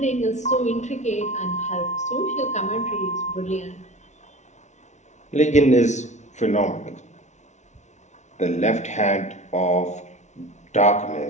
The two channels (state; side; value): late; right; 0.33 ms